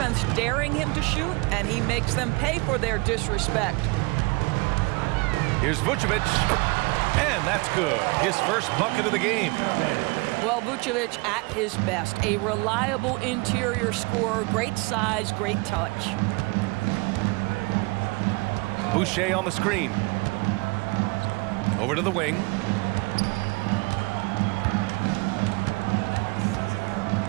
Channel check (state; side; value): quieter; left; 26.8 dB